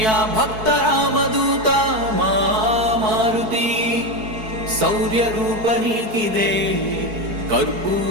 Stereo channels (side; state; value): left; late; 4.6 ms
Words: భక్త రామదూత మా మారుతి శౌర్య రూప నీకిదే